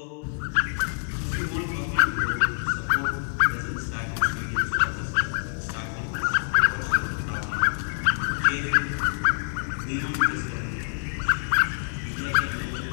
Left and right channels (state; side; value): silent; right; 59 dB below the other